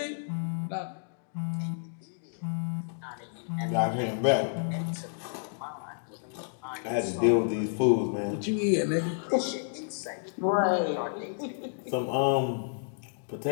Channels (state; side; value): silent; right; digital silence